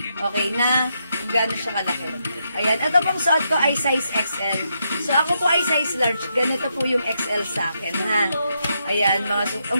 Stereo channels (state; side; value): inverted; both; correlation -0.81